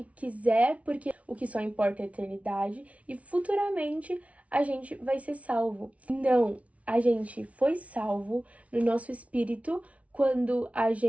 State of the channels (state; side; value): late; left; 0.065 ms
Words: quiser, porque o que só importa é a eternidade, e futuramente a gente vai ser salvo. Não, a gente foi salvo no nosso espírito quando a